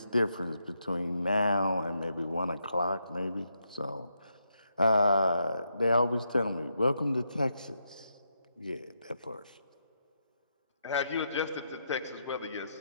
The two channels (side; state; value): both; inverted; correlation -0.81